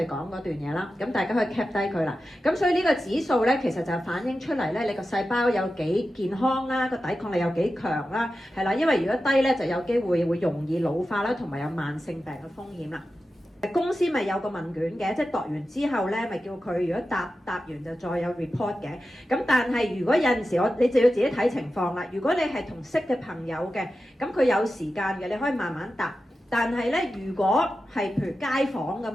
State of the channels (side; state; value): both; normal; correlation 0.92